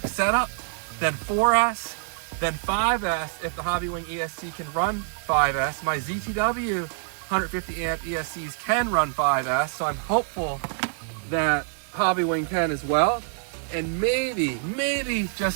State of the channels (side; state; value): left; silent; 61 dB below the other